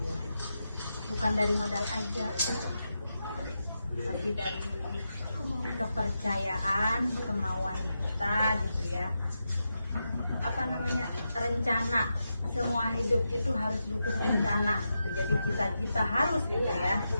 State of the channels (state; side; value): inverted; both; correlation -0.88